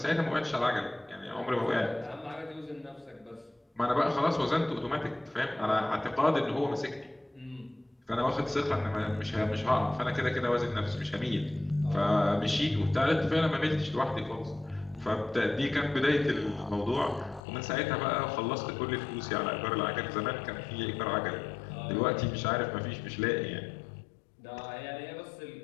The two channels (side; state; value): right; drops out; at 17.4 s